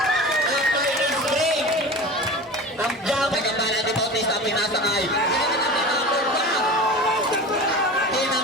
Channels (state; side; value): normal; both; correlation 0.33